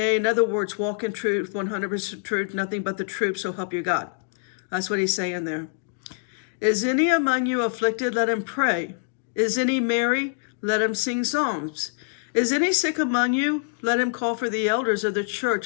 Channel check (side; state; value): right; silent; digital silence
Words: In other words, walk in truth, 100% truth, nothing but the truth, so help you God. That's what he's saying there. Is any among you afflicted? Let him pray. Is any merry? Let him sing psalms. Is any sick among you? Let him call for the elders of the church,